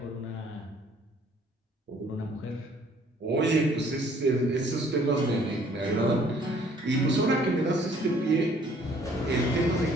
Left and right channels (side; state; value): both; normal; correlation 0.58